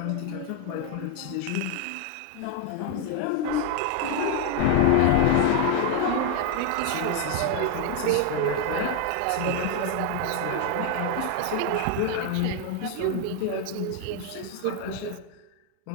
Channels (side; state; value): both; different; correlation 0.01